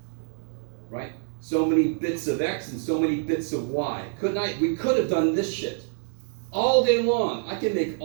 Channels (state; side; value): silent; left; 61 dB below the other